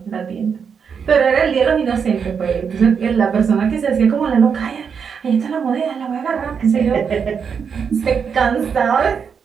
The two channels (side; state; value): left; quieter; 6.6 dB